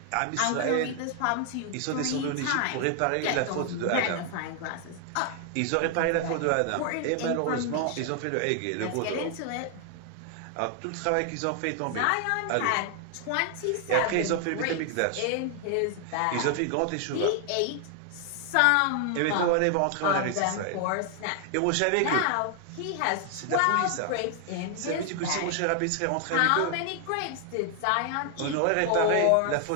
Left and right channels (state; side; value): different; both; correlation 0.00